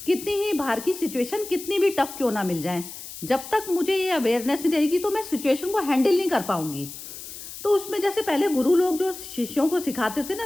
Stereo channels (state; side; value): noise; left; hiss, 12 dB below the sound